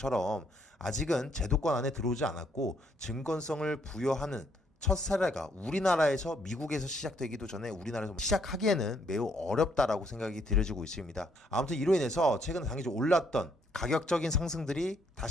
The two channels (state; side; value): normal; both; correlation 0.70